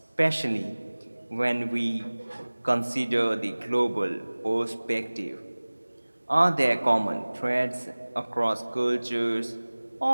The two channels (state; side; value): inverted; both; correlation -1.00